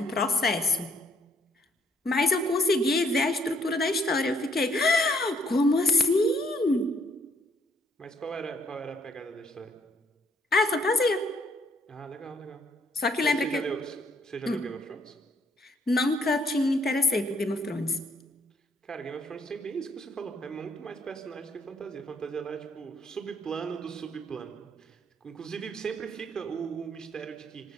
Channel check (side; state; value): both; normal; correlation 0.67